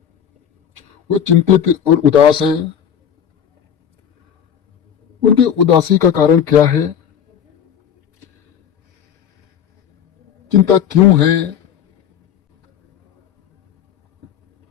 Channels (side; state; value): right; quieter; 8.8 dB